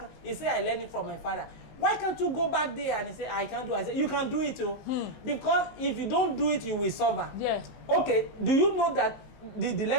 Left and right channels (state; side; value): late; right; 19 ms